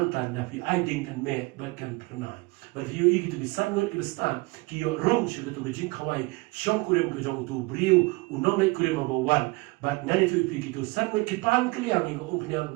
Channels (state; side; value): quieter; left; 24.7 dB